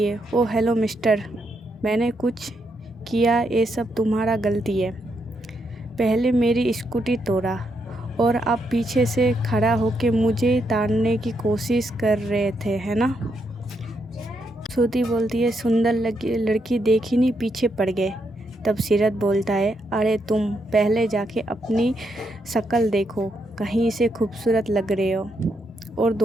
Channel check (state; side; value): normal; both; correlation 0.79